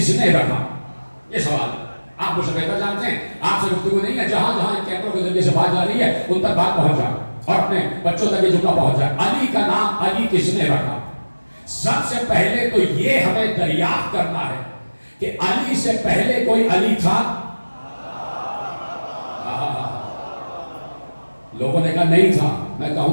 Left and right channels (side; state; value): both; inverted; correlation -1.00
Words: نے رکھا؟ یہ سوال ہے. آپ مجھ سے بہتر جانتے ہیں، آپ سے گفتگو نہیں ہے، جہاں جہاں ان کیمروں کے ذریعے سے بات جا رہی ہے ان تک بات پہنچ جائے اور اپنے بچوں تک یہ جملہ پہنچ جائے۔ علی کا نام علی کس نے رکھا؟ سب سے پہلے تو یہ ہمیں دریافت کرنا ہے کہ علی سے پہلے کوئی علی تھا؟ لوگوں نے کہا نہیں تھا، میں